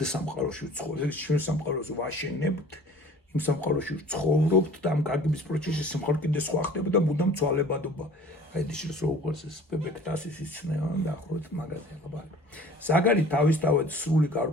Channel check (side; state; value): both; normal; correlation 0.47